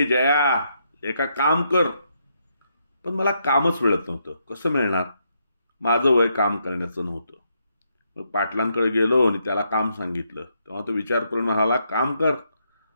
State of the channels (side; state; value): both; inverted; correlation -0.77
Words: जया, एका काम कर. पण मला कामच मिळत नव्हतं. कसं मिळणार? माझं वय काम करण्याचं नव्हतं. मग पाटलांकडे गेलो आणि त्याला काम सांगितलं. तेव्हा तो विचार करून म्हणाला, काम कर.